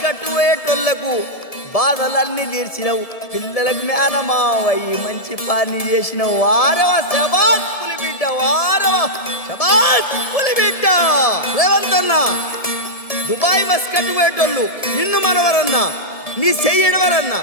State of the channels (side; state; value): right; late; 1.7 ms